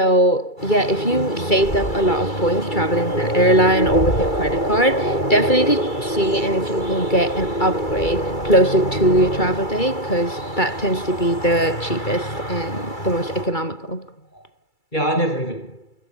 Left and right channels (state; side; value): late; right; 2.3 ms